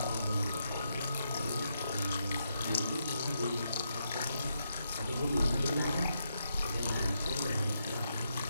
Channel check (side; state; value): both; inverted; correlation -0.81